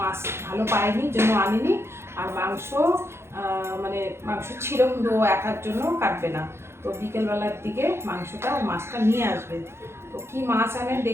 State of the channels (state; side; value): late; left; 0.12 ms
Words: ভালো পায়নি, জন্য আনেনি। আর মাংস মানে মাংস ছিল, কিন্তু ও একার জন্য কাটবে না। তো বিকেলবেলার দিকে মাংসটা আর মাছটা নিয়ে আসবে। তো কি মাছ আনে